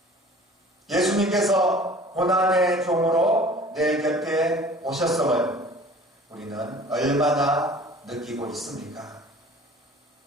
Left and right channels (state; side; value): normal; both; correlation 0.46